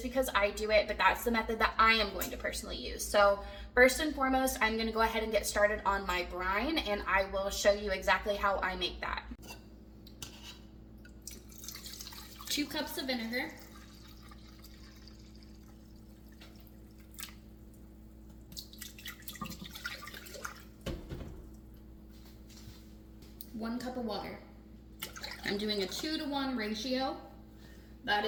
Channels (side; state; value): both; identical; correlation 1.00